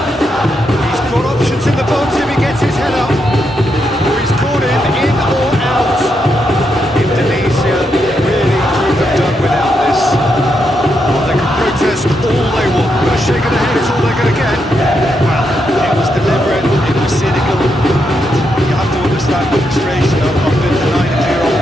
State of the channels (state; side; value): normal; both; correlation 0.81